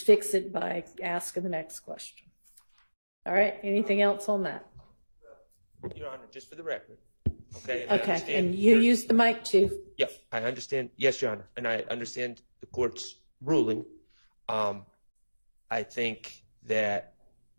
fix it by asking the next question. All right, anything else on that? Your Honor, just for the record. Okay. Okay, and you use the mic too. Yeah, I understand. Yes, Your Honor, and I understand the court's ruling. I think that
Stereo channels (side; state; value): both; inverted; correlation -1.00